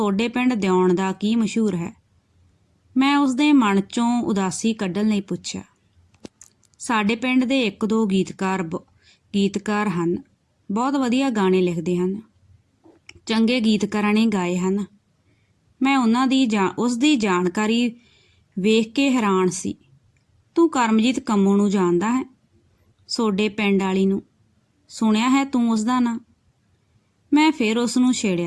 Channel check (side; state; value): both; identical; correlation 1.00